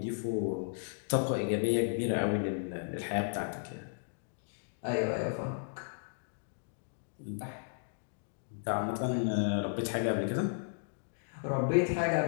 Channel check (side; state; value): right; silent; digital silence